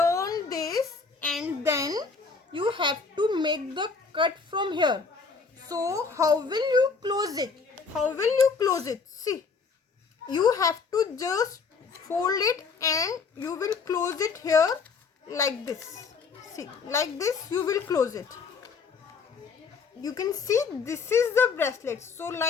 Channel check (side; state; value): right; quieter; 5.0 dB